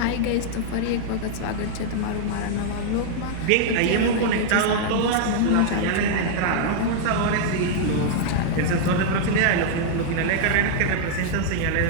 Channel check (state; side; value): different; both; correlation -0.01